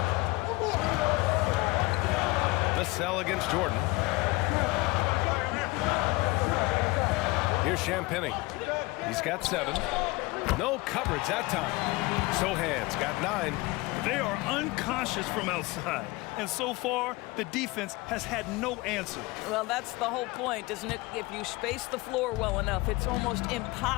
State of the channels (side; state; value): right; quieter; 22.6 dB